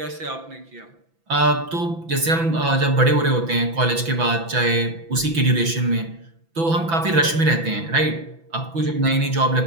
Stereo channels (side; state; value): left; late; 6.0 ms